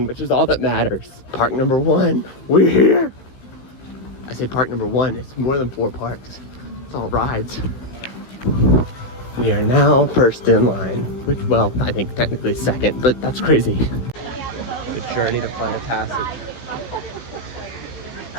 which is all that matters. Park number 1, we're here. I say park number 1, it's more than 4 parks. It's all rides. We are now first in line, which, well, I think technically second, but that's crazy. The journey to Flight of Passage.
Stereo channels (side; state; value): right; late; 16 ms